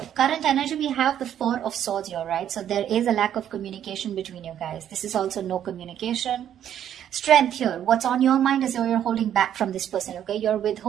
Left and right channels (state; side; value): quieter; left; 10.2 dB